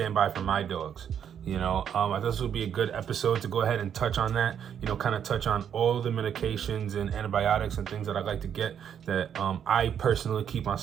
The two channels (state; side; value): quieter; left; 8.6 dB